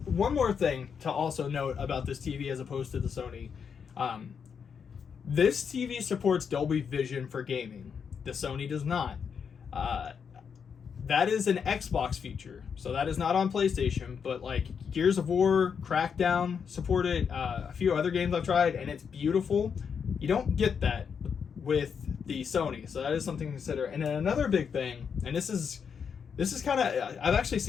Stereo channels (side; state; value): right; quieter; 6.7 dB